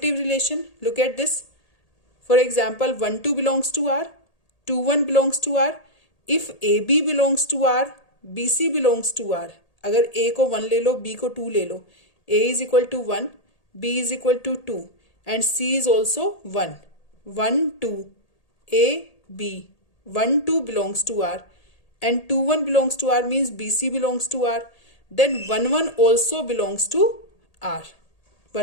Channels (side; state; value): right; late; 1.8 ms